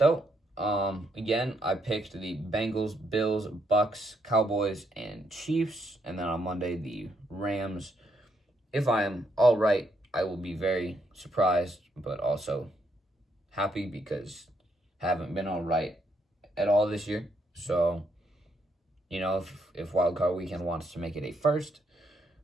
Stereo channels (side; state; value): both; normal; correlation 0.75